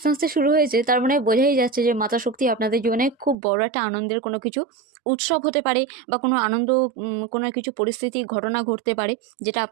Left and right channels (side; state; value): left; drops out; at 3.4 s